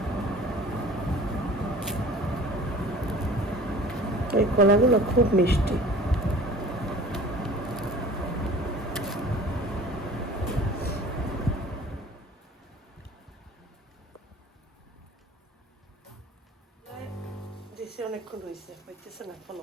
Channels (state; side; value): normal; both; correlation 0.45